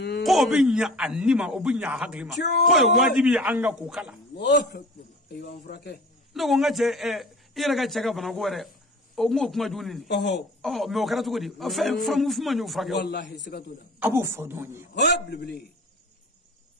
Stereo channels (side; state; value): both; normal; correlation 0.41